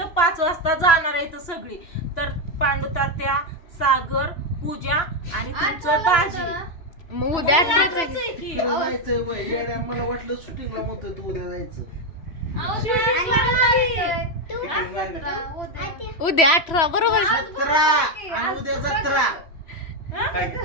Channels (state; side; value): late; right; 3.0 ms